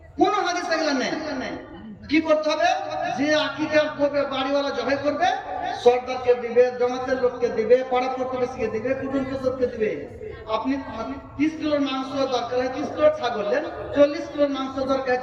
কোন হাদিস এগুলো নেই। কি করতে হবে? যে আকিকা করবে, বাড়িওয়ালা জবাই করবে, সরদারকে দিবে, জমাতের লোককে দিবে, পাড়া প্রতিবেশীকে দিবে, কুটুম সদরকে দিবে। আপনি 30 কিলোর মাংস দরকার হয় 30 কিলো ছাগল নেন, 40 কিলোর মাংস দরকার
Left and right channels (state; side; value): identical; both; correlation 1.00